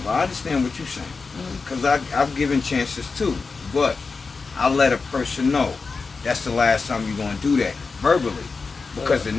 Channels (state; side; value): quieter; right; 4.5 dB